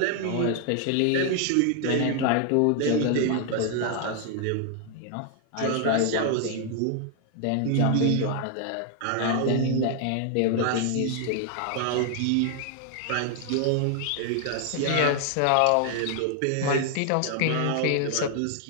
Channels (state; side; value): different; both; correlation 0.00